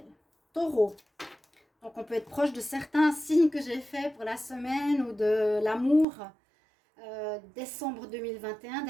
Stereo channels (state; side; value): drops out; left; at 6.1 s